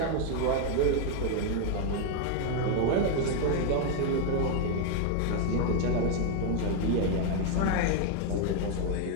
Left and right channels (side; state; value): both; different; correlation 0.00